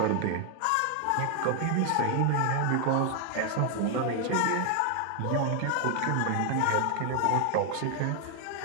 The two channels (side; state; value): both; different; correlation 0.00